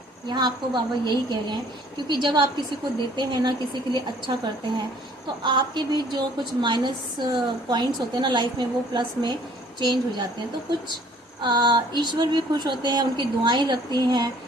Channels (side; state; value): both; normal; correlation 0.56